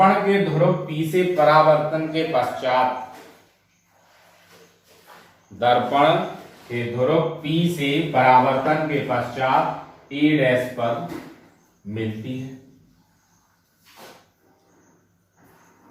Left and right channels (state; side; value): identical; both; correlation 1.00